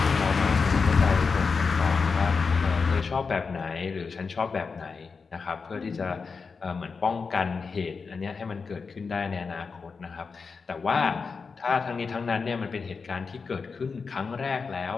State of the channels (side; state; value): right; quieter; 5.0 dB